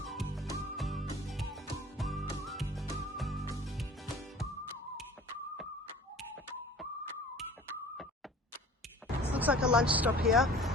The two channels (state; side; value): normal; both; correlation 0.45